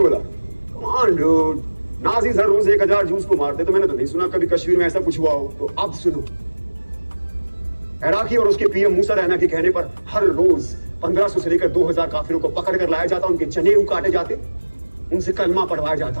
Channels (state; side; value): inverted; both; correlation -1.00